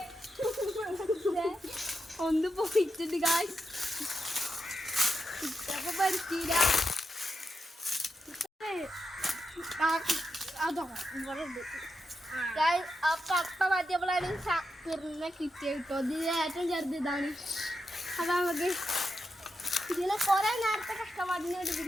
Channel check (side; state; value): both; normal; correlation 0.87